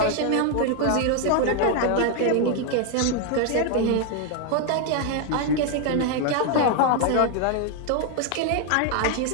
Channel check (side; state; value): both; different; correlation 0.00